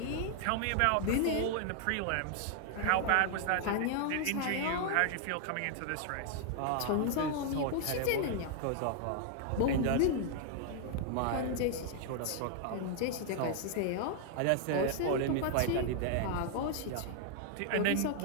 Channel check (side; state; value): both; different; correlation 0.00